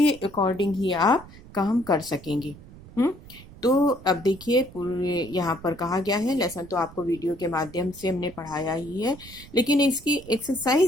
अकॉर्डिंग ही आप काम कर सकेंगे। तो अब देखिए, पूरे यहाँ पर कहा गया है, लेसन तो आपको वीडियो के माध्यम से हमने पढ़ाया ही है, लेकिन इसकी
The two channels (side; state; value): right; noise; rumble, 19 dB below the sound